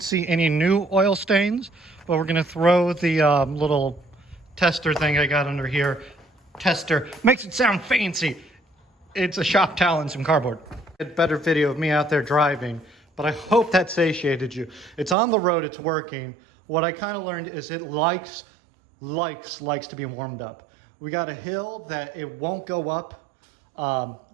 see any new oil stains. But we're gonna throw the little tester thing I got under here. Tester makes it sound fancy. It's a shop towel and some cardboard. A better video of me out there driving, but I hope that satiated you. It's on the road, it's working. What I kind of learned is it likes to be warmed up. We got a hill that it won't go up,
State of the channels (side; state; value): left; drops out; at 15.2 s